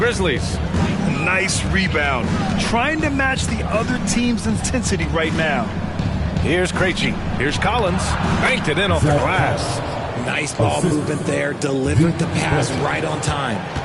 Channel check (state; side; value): identical; both; correlation 1.00